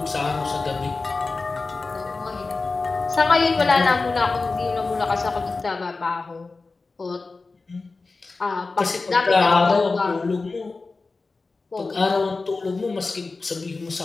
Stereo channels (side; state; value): right; quieter; 3.8 dB